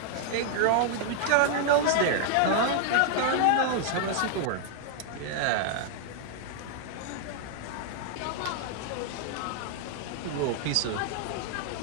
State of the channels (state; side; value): different; both; correlation 0.00